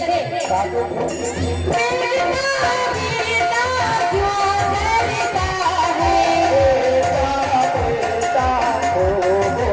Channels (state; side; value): identical; both; correlation 1.00